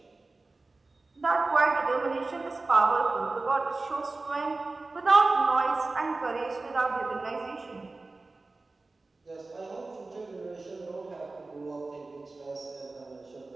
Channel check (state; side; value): quieter; left; 3.4 dB